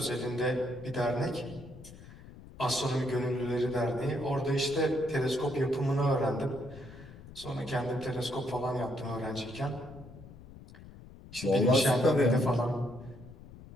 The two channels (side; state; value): left; noise; rumble, 18 dB below the sound